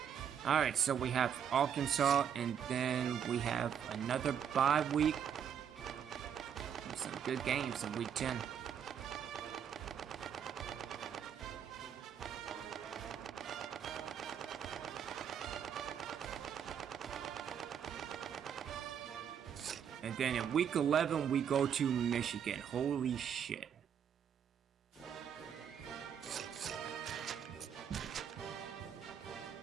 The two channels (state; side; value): quieter; left; 8.3 dB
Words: Alright, so we have Arkansas, and then we have another bye week. Some good games in week 10. And then in week 11, we go to Michigan. Holy shit.